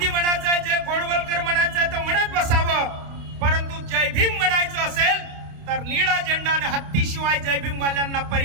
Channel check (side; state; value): left; late; 29 ms